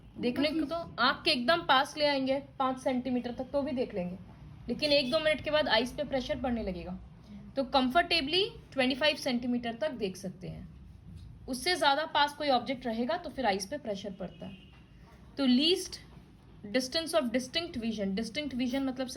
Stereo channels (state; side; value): identical; both; correlation 1.00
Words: देखने को तो आंख के एकदम पास ले आएंगे 5 सेंटीमीटर तक तो भी देख लेंगे, लेकिन 1-2 मिनट के बाद आइस पे प्रेशर पड़ने लगेगा। तो कंफर्टेबली 25 सेंटीमीटर तक देख सकते हैं। उससे ज़्यादा पास कोई ऑब्जेक्ट रहेगा तो फिर आइस पे प्रेशर पड़ता है। तो least distance of distinct vision मतलब